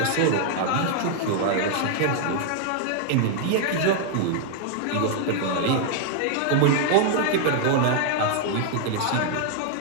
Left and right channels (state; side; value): different; both; correlation -0.01